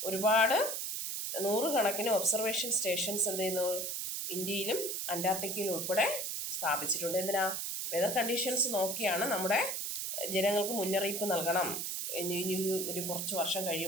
ഒരുപാട് നൂറുകണക്കിന് ഒബ്സർവേഷൻ സ്റ്റേഷൻസ് ഇന്ത്യയിലും അന്റാർട്ടിക്കയിലും ഉൾപ്പെടെ സ്ഥാപിച്ചിട്ടുണ്ട്. എന്തിനാ? വെതർ കണ്ടീഷൻസ് നോക്കിയാണ് നമ്മുടെ ജനങ്ങൾക്ക് മുന്നറിയിപ്പ് നൽകണം. ഇനി ഒരു കുറച്ച് വർഷം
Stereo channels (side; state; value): right; noise; hiss, 3 dB below the sound